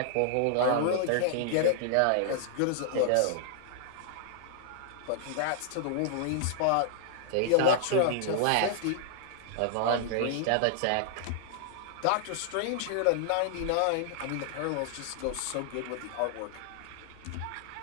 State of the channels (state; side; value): different; both; correlation -0.01